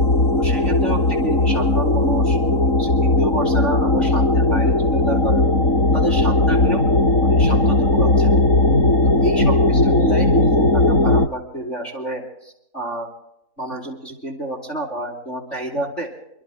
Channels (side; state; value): right; late; 3.6 ms